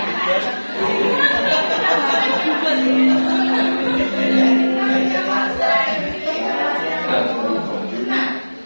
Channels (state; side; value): inverted; both; correlation -1.00